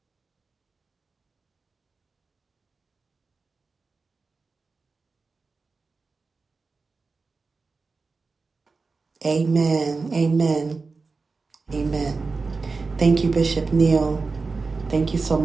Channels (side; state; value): left; quieter; 4.2 dB